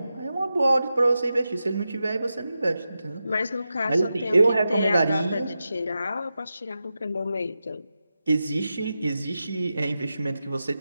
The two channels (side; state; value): both; inverted; correlation -0.91